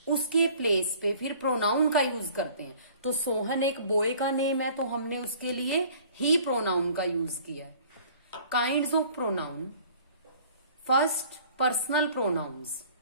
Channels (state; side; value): inverted; both; correlation -0.52